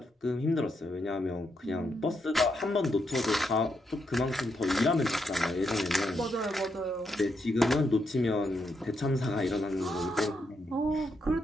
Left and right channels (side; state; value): both; normal; correlation 0.80